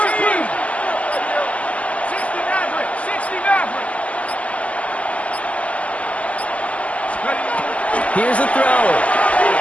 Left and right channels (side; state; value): right; late; 0.068 ms